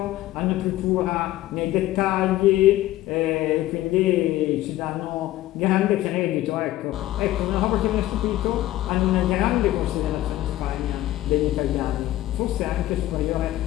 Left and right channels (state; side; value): quieter; right; 15.2 dB